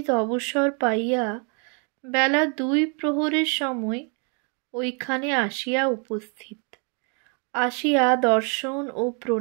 অবসর পাইয়া বেলা 2 প্রহরের সময় ওইখানে আসিয়া উপস্থিত। আসিয়া দর্শন ও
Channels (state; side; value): quieter; left; 37.6 dB